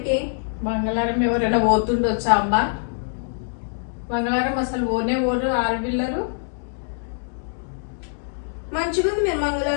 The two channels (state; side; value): silent; right; digital silence